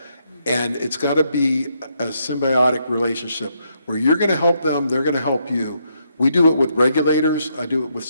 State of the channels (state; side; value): inverted; both; correlation -0.76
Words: And it's got to be a symbiotic relationship where you're going to help them, they're going to help you. We do it with regulators. I do it with